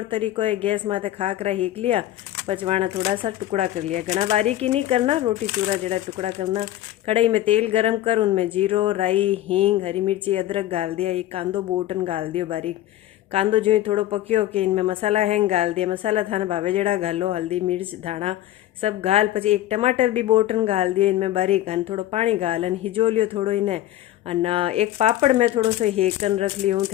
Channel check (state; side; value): quieter; right; 13.8 dB